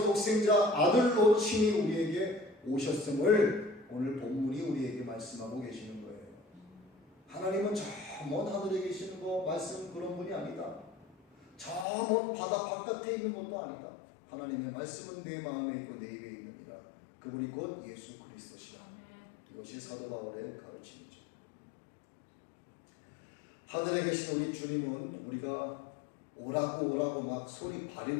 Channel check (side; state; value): right; drops out; at 11.9 s